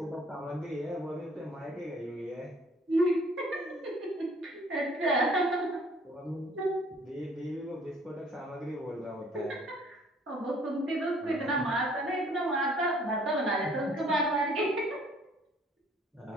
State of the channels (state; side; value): normal; both; correlation 0.58